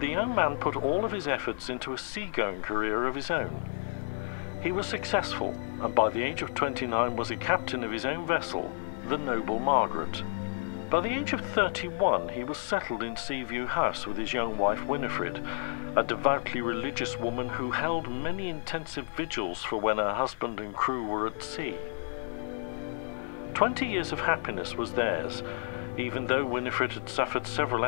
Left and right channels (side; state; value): right; silent; 57 dB below the other